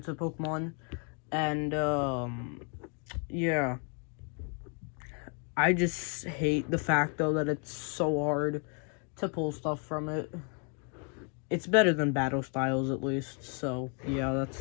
Pokemon, and yeah. I just hate the fact, though, that it's so hard to pull stuff from it. it's better than Battle Styles at least. So yeah,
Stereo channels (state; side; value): quieter; right; 39.0 dB